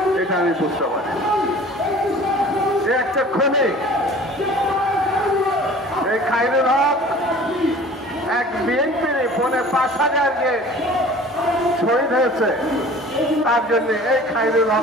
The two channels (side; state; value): both; normal; correlation 0.45